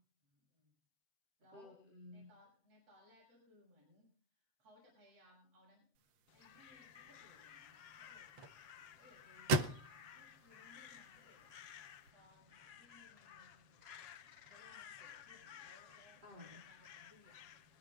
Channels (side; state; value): left; late; 7.7 ms